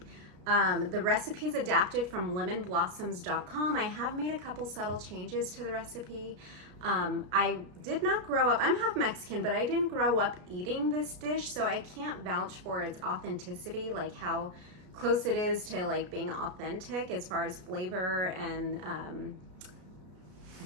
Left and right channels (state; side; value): late; left; 33 ms